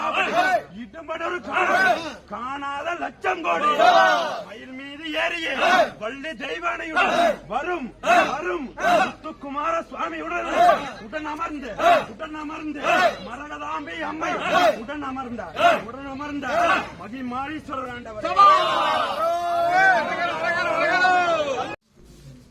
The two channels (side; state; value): both; identical; correlation 1.00